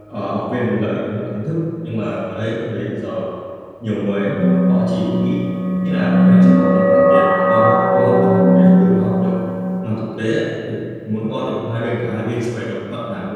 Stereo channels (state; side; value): identical; both; correlation 1.00